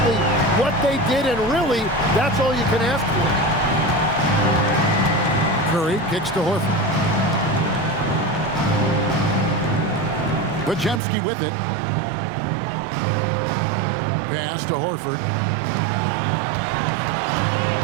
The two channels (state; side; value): drops out; left; at 11.0 s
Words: what they did, and really, that's all you can ask for. Curry kicks to Horford. Podziemski with it. Pass to Horford.